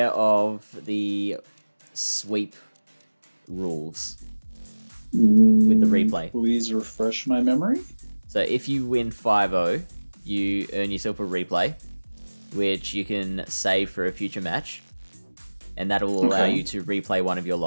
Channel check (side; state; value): both; inverted; correlation -1.00